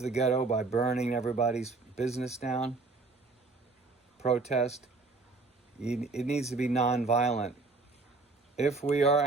ghetto by burning everybody's business down? Protest? It needs to be nonviolent. If we are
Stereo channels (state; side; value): quieter; left; 3.8 dB